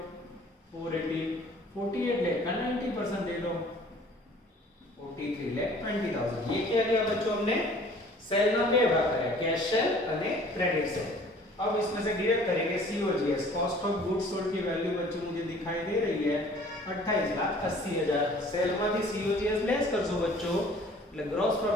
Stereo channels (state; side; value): normal; both; correlation 0.51